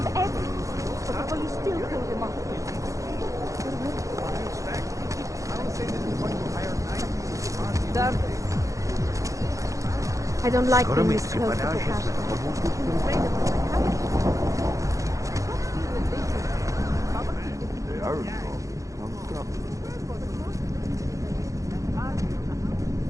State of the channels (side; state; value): left; late; 0.16 ms